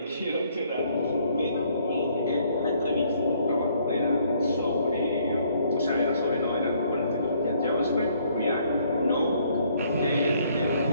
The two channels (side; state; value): both; inverted; correlation -0.65